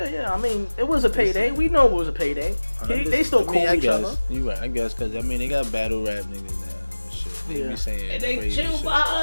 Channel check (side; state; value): both; inverted; correlation -1.00